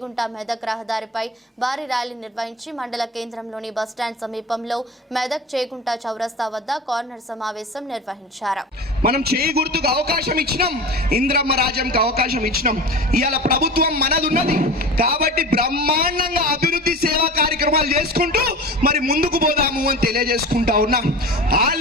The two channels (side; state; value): both; normal; correlation 0.33